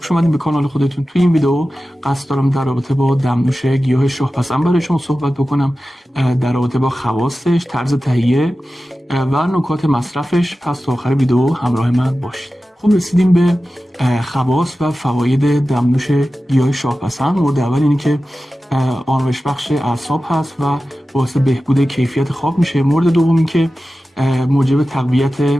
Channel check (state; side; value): normal; both; correlation 0.95